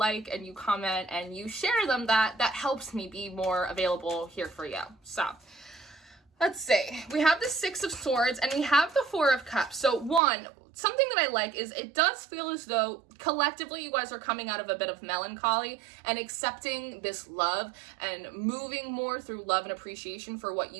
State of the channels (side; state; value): left; drops out; at 10.2 s